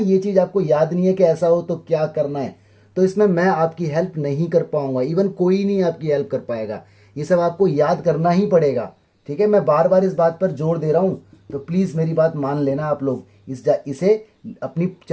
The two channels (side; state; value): both; identical; correlation 1.00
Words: चीज आपको याद नहीं है कि ऐसा हो तो क्या करना है, तो इसमें मैं आपकी हेल्प नहीं कर पाऊंगा, इवन कोई नहीं आपकी हेल्प कर पाएगा, ये सब आपको याद करना ही पड़ेगा। ठीक है, मैं बार बार इस बात पर जोर दे रहा हूं, तो प्लीज मेरी बात मान लेना आप लोग, इसे अपनी